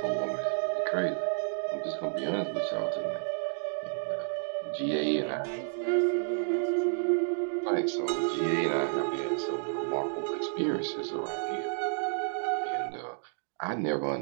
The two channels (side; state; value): left; silent; digital silence